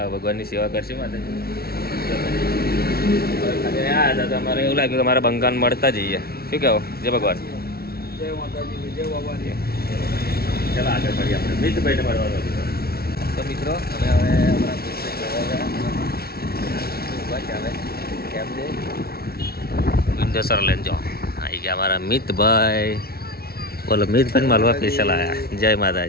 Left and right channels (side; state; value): right; late; 0.44 ms